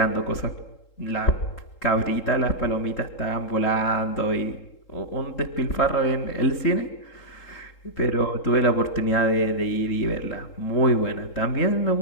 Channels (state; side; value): late; right; 3.8 ms